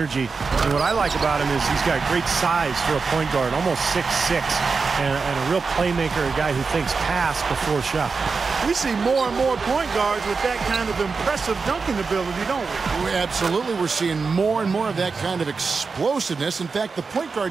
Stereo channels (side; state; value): left; quieter; 4.7 dB